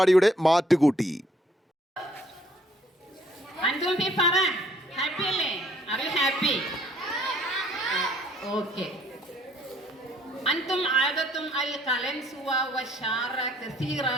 മാറ്റുകൂട്ടി. أنتم عادتم القلنسوة والشعر كثيرة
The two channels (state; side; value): normal; both; correlation 0.63